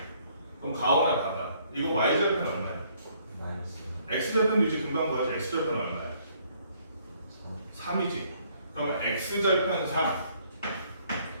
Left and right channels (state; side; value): inverted; both; correlation -0.65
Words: 그럼 가오나 봐봐. 이거 y절편 얼마야? 마이너스 x절편도 이제 금방 구하지. x절편 얼마야? 3이지. 그러면 x절편 3,